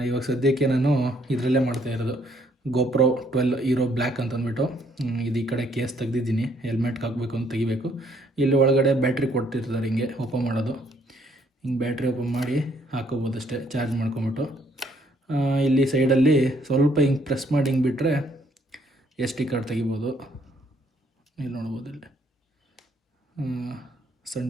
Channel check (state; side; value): normal; both; correlation 0.67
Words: ಇವಾಗ ಸದ್ಯಕ್ಕೆ ನಾನು ಇದರಲ್ಲೇ ಮಾಡ್ತಾಯಿರೋದು. GoPro 12 ಹೀರೋ ಬ್ಲ್ಯಾಕ್ ಅಂತಂದ್ಬಿಟ್ಟು ಇದು ಈ ಕಡೆ ಕೇಸ್ ತೆಗ್ದಿದ್ದೀನಿ. ಹೆಲ್ಮೆಟ್ಗೆ ಹಾಕಬೇಕು ಅಂತ ತೆಗಿಬೇಕು. ಇಲ್ಲಿ ಒಳಗಡೆ ಬ್ಯಾಟ್ರಿ ಕೊಡ್ತಿರ್ತಾರೆ, ಹಿಂಗೆ ಓಪನ್ ಮಾಡೋದು. ಹಿಂಗೆ ಬ್ಯಾಟ್ರಿ ಓಪನ್ ಮಾಡಿ ಹಾಕೋಬೋದು ಅಷ್ಟೇ, ಚಾರ್ಜ್ ಮಾಡ್ಕೊಂಬಿಟ್ಟು. ಇಲ್ಲಿ ಸೈಡಲ್ಲಿ ಸ್ವಲ್ಪ ಹಿಂಗೆ ಪ್ರೆಸ್ ಮಾಡಿ ಹಿಂಗೆ ಬಿಟ್ಟರೆ SD ಕಾರ್ಡ್ ತೆಗಿಬೋದು. ಇಲ್ಲಿ ನೋಡ್ಬೋದು, ಇಲ್ಲಿ ಸನ್